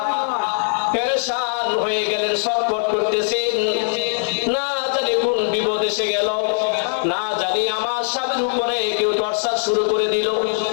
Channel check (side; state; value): right; silent; digital silence